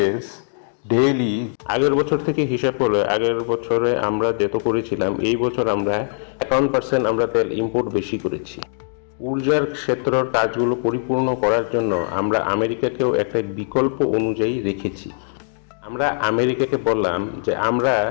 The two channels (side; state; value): right; silent; digital silence